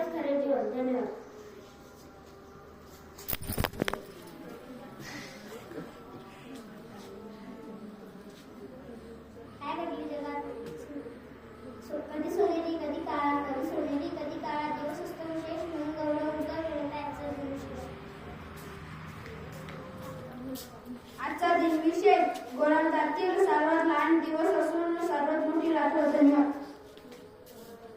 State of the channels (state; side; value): identical; both; correlation 1.00